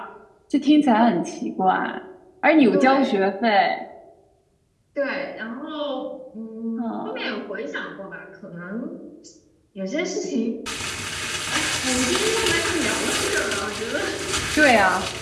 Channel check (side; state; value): both; identical; correlation 1.00